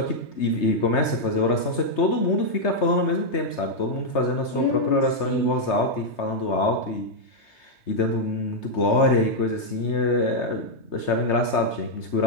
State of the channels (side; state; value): right; late; 3.3 ms